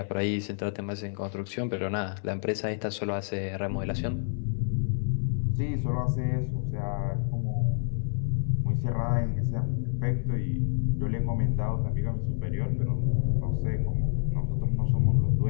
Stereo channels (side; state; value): right; silent; 57 dB below the other